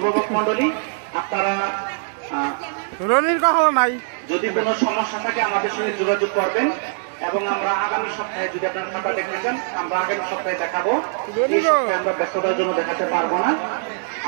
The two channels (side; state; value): left; silent; digital silence